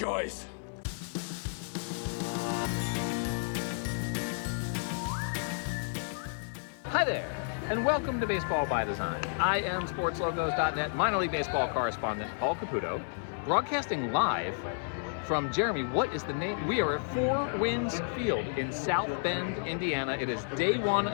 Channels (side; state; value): right; silent; 57 dB below the other